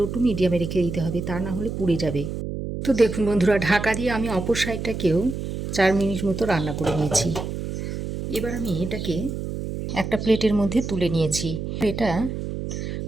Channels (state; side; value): noise; right; hum, 5 dB below the sound